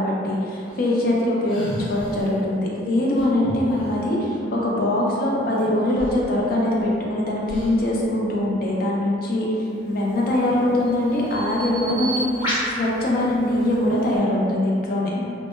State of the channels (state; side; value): normal; both; correlation 0.57